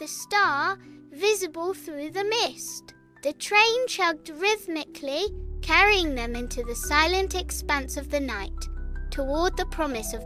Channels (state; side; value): identical; both; correlation 1.00